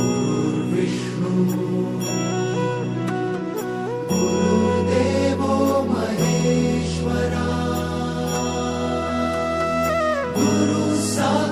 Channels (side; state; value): both; identical; correlation 1.00